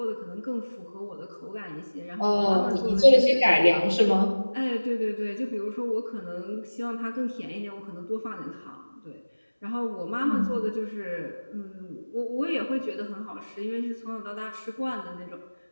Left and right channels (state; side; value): inverted; both; correlation -1.00